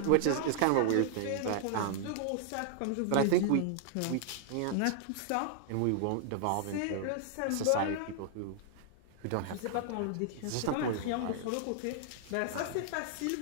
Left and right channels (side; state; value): both; different; correlation -0.01